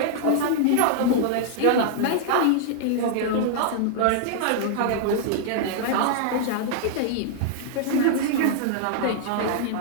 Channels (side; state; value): both; different; correlation -0.01